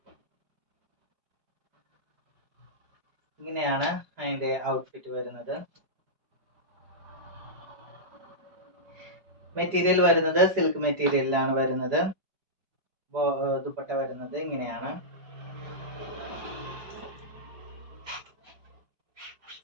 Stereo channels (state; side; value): late; left; 4.9 ms